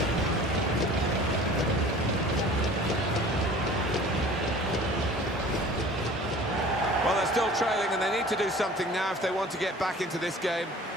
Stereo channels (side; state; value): both; normal; correlation 0.45